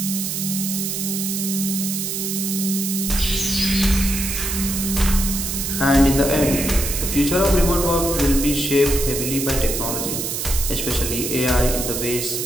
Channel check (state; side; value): noise; right; hiss, 3 dB below the sound